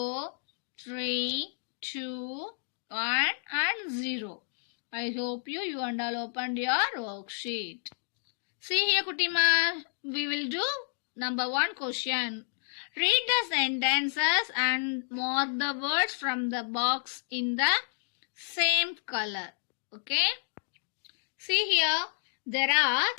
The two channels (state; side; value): silent; right; digital silence